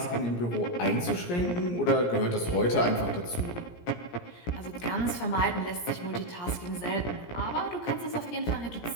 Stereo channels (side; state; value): right; late; 17 ms